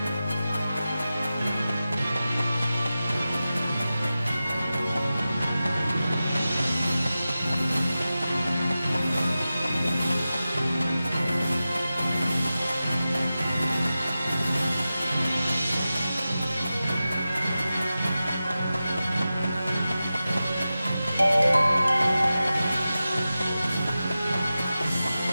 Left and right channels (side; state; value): both; inverted; correlation -0.94